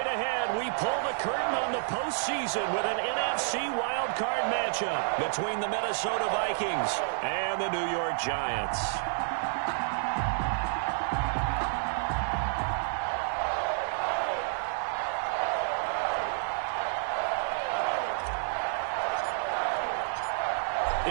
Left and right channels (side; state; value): left; silent; digital silence